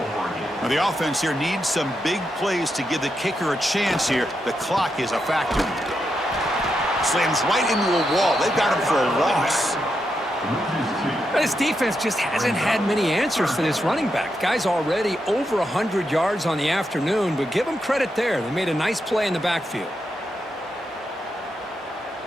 Now the offense here needs some big plays to give the kicker a chance here. The clock is a factor. Slams right into a wall. They've got him for a loss. This defense just hasn't had many answers for this running back. Guy's already over 100 yards on the afternoon, but give them credit there. They made a nice play in the backfield.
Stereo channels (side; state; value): both; normal; correlation 0.84